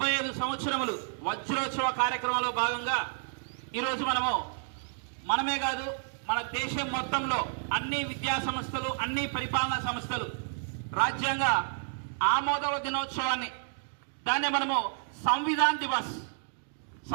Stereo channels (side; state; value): left; silent; digital silence